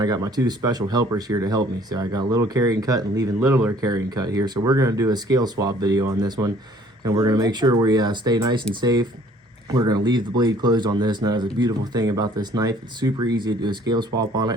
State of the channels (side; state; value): both; normal; correlation 0.56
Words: got my two special helpers here to help me. So I got a little Carryandcut and even littler Carryandcut here. So we're going to do a scale swap video on this one, and we're going to make sure we stay nice and safe. We're going to leave the blade closed on this. Now, that's a beautiful thing about this knife. It's super easy to do a scale swap on it,